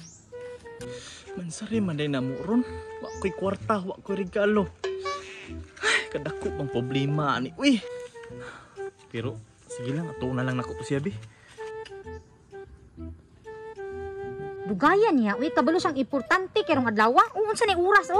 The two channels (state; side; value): identical; both; correlation 1.00